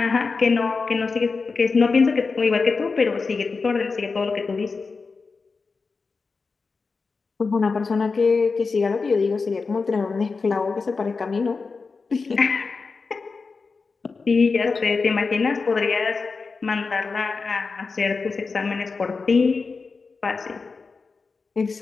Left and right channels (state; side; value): quieter; right; 4.5 dB